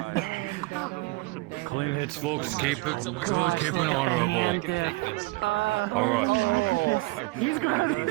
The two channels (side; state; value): left; quieter; 22.8 dB